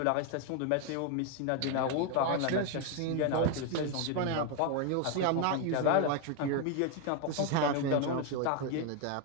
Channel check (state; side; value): different; both; correlation 0.01